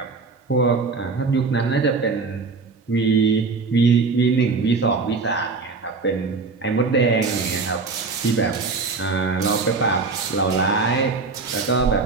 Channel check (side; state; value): left; quieter; 4.3 dB